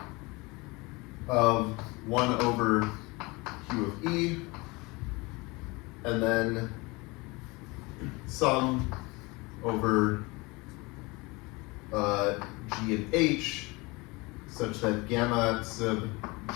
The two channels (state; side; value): quieter; right; 24.9 dB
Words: of 1 over Q of E, and then sum over G and H such that gamma sub